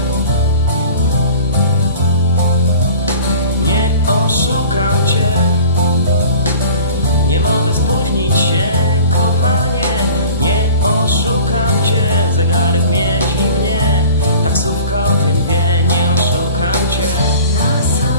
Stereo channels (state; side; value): inverted; both; correlation -0.43